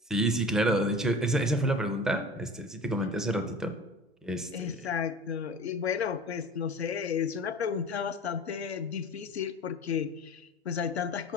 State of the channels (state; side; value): normal; both; correlation 0.38